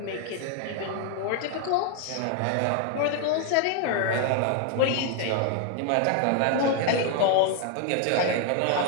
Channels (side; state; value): both; different; correlation 0.00